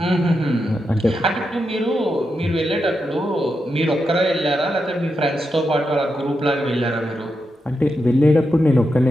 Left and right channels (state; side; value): normal; both; correlation 0.86